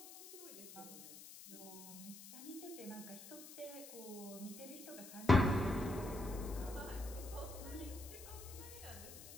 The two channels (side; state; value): left; noise; hiss, 14 dB below the sound